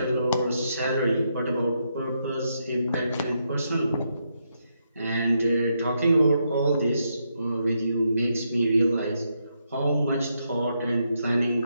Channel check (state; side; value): inverted; both; correlation -0.80